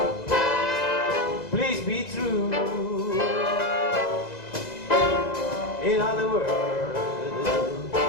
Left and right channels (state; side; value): late; right; 2.0 ms